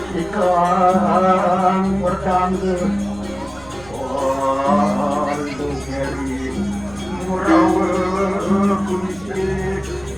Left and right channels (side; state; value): right; noise; rumble, 20 dB below the sound